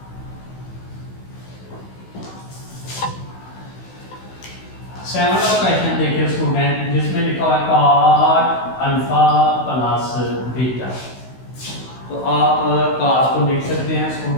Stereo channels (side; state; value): right; late; 16 ms